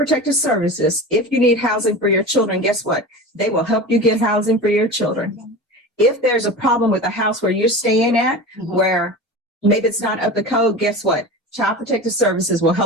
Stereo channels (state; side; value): normal; both; correlation 0.31